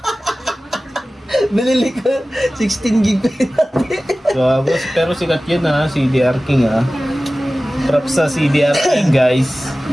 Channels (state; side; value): normal; both; correlation 0.97